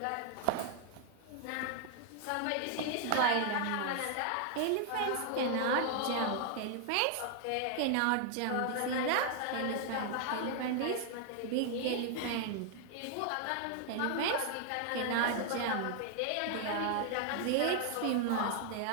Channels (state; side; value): different; both; correlation 0.00